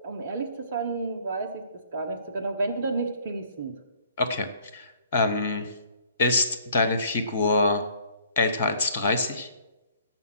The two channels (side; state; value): both; inverted; correlation -0.57